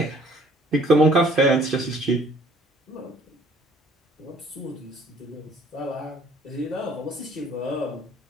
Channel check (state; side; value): normal; both; correlation 0.57